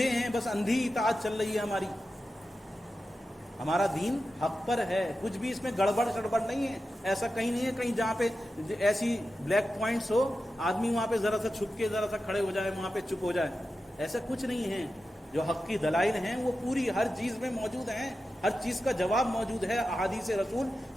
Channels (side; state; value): both; normal; correlation 0.92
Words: ہیں، بس اندھی اطاعت چل رہی ہے ہماری۔ ہمارا دین حق پر ہے، کچھ بھی اس میں گڑبڑ نہیں ہے، ایسا کہیں نہیں ہے کہیں جہاں پہ ایسی بلیک پوائنٹس ہو، آدمی وہاں پہ ذرا سا چھپ کے ذرا سا کھڑے ہو جائے، وہاں پہ چپ ہو جائے، ایسا کچھ نہیں ہے۔ جو حق کی دلائل ہیں وہ پوری ہر چیز میں موجود ہیں، ہر چیز کا جواب موجود ہے، احادیث رسول،